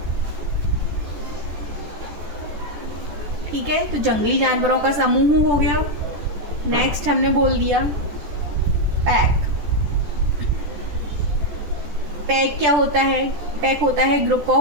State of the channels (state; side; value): late; left; 14 ms